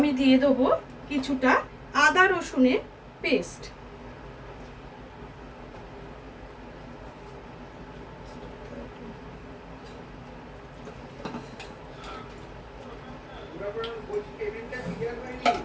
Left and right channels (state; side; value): identical; both; correlation 1.00